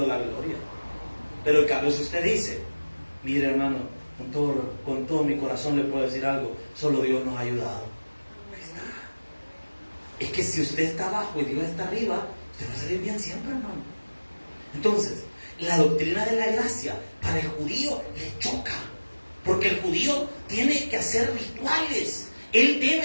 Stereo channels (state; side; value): inverted; both; correlation -1.00